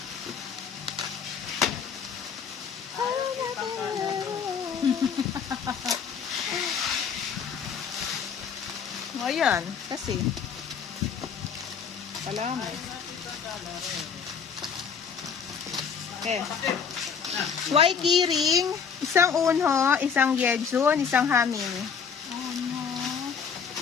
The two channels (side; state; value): right; quieter; 6.7 dB